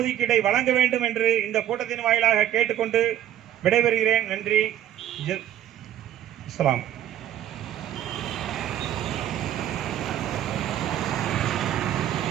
வழங்க வேண்டும் என்று இந்த கூட்டத்தின் வாயிலாக கேட்டுக்கொண்டு விடைபெறுகிறேன். நன்றி. இஸ்லாம்.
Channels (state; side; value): quieter; left; 11.6 dB